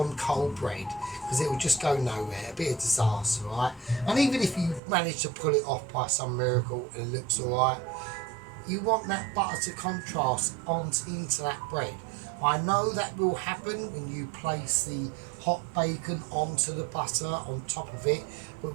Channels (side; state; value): left; drops out; at 4.8 s